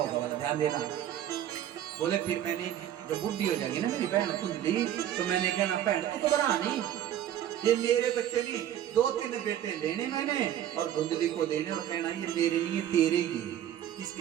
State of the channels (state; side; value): quieter; left; 11.2 dB